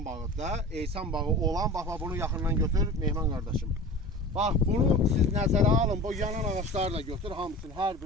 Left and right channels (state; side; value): normal; both; correlation 0.37